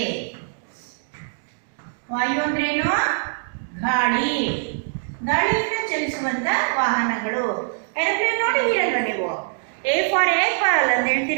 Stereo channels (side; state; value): left; silent; digital silence